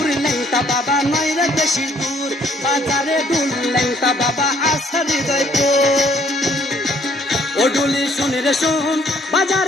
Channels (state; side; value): normal; both; correlation 0.64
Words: ল্যাংটা বাবা নয় রে বেশি দূর, বাজারে ডুল ল্যাংটা বাবা আসা হৃদয়পুর। ও ডুলি শোন রে শোন,